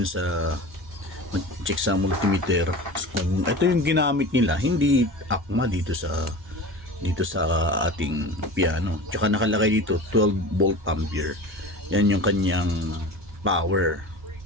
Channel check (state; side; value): normal; both; correlation 0.34